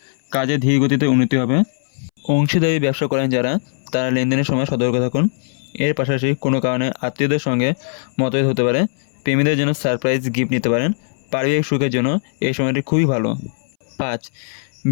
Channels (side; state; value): right; silent; 65 dB below the other